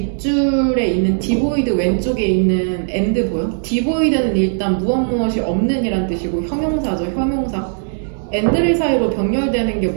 있는 디보이드 왼쪽에 있는 and 보여? 디보이드는 일단 무엇이 없는 이란 뜻이고 형용사죠. 형용사. and를 사이로 병렬되는 게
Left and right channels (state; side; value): silent; left; 68 dB below the other